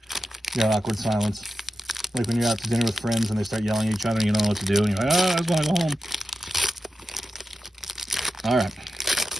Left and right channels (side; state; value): both; normal; correlation 0.91